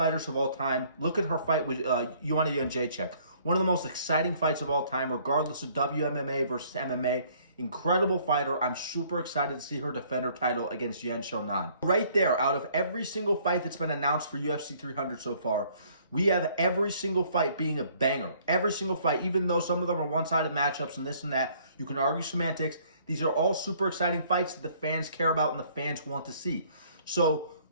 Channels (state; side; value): inverted; both; correlation -0.60